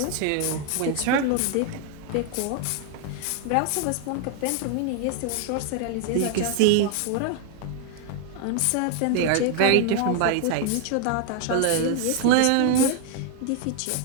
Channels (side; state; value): both; different; correlation 0.00